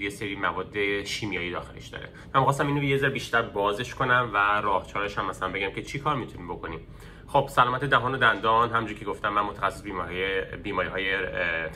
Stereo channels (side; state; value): both; identical; correlation 1.00